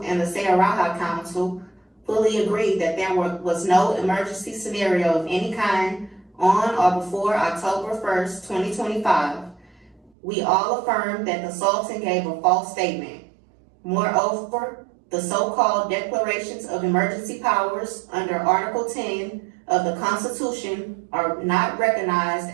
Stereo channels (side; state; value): left; drops out; at 10.1 s